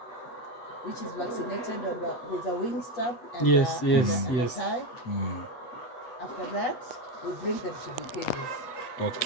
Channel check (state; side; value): late; right; 7.9 ms